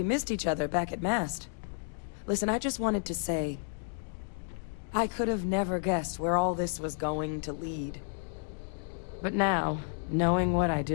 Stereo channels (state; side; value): silent; right; digital silence